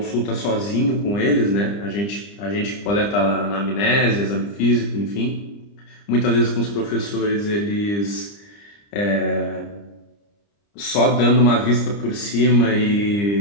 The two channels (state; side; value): late; right; 30 ms